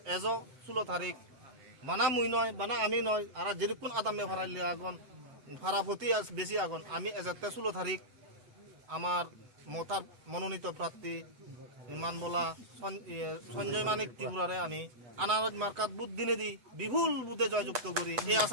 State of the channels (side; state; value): left; late; 7.8 ms